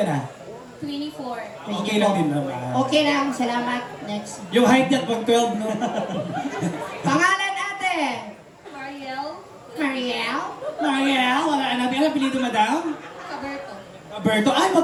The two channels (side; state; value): both; identical; correlation 1.00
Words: na? 24. Okay lang din naman. Okay lang, salamat. Next. Yung height niya pag 12, no? Pangalan ate? Mariel Mariel? Mariel, wala na. Ano apelido, madam? Caberto. Alberto. Ay,